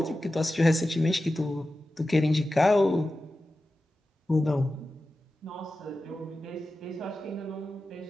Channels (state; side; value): normal; both; correlation 0.93